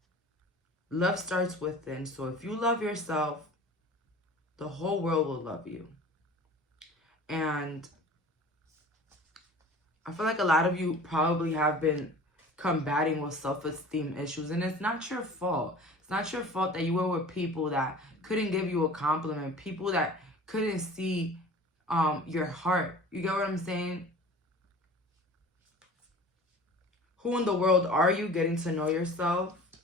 love starts within. So if you love yourself, the whole world will love you. And I feel like a lot of you probably have been combating with self-esteem issues, and it's not your fault. It's not your fault that you were with people that couldn't give you a compliment, people that couldn't see your heart. You get what I'm saying? Who in the world are you? Getting to know yourself.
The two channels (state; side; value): normal; both; correlation 0.42